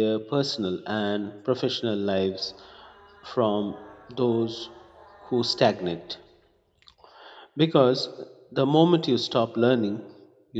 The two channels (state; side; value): identical; both; correlation 1.00